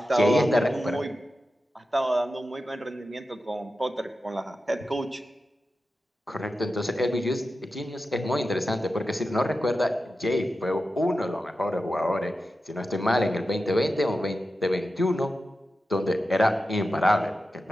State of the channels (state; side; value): normal; both; correlation 0.92